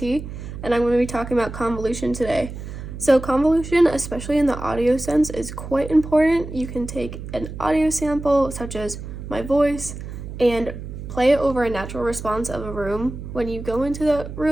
and I'm going to be talking about convolution today. So convolution, especially in the audio sense, is quite important. You can take an audio sample, such as my voice, and play it over a natural response of a room. When you go into the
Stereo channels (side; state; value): right; noise; hum, 10 dB below the sound